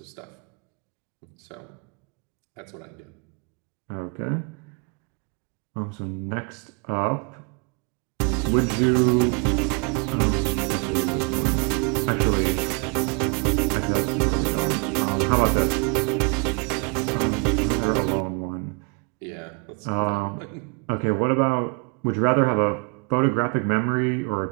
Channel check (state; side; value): quieter; left; 34.8 dB